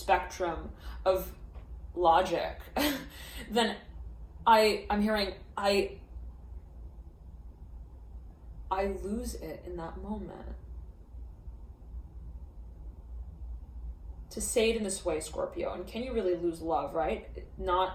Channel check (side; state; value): both; identical; correlation 1.00